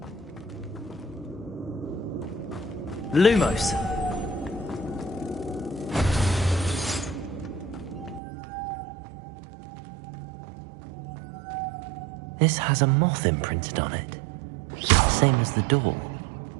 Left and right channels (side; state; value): left; drops out; at 8.2 s